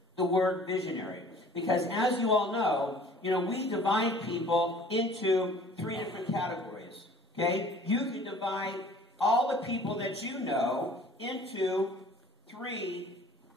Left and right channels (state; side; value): normal; both; correlation 0.50